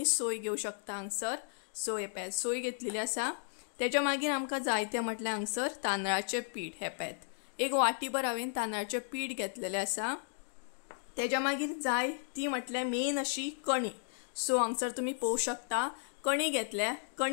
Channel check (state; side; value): silent; right; digital silence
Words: सोय घेवं शकता हांगसर। सो हे पळयात सोय घेतलेली आसा। तेच्या मागीर आमकां जाय ते म्हटल्यार हांगसर तांदळाचे पीठ। हे पळयात एक वाटीभर हांवें तांदळाचे पीठ घेतलेले आसा। तेच्या मागीर जाय ती म्हटल्यार मेन अशी कणी। सो हांगसर तुम्ही पळोवंक शकता कणी घेतल्या.